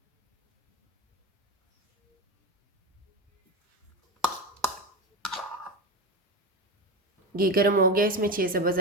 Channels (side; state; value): both; normal; correlation 0.19